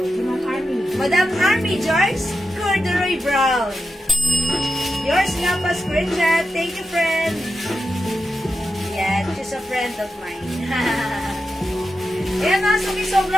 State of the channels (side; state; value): both; normal; correlation 0.90